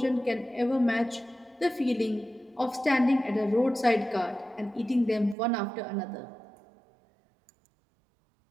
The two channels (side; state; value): left; drops out; at 5.4 s